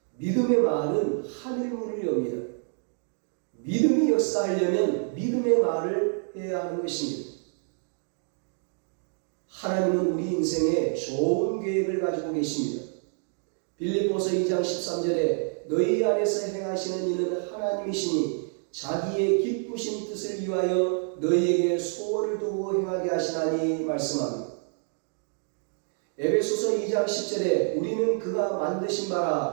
믿음의 말은 하늘문을 엽니다. 믿음이 역사하려면 믿음의 말을 해야 하는 것입니다. 하나님은 우리 인생에 좋은 계획을 가지고 계십니다. 빌립보서 2장 13절에 너희 안에서 행하시는 이는 하나님이시니 자기의 기쁘신 뜻을 위하여 너희에게 소원을 두고 행하게 하시나니 말씀합니다. 에베소서 2장 10절에 우리는 그가 만드신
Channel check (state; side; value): silent; left; 59 dB below the other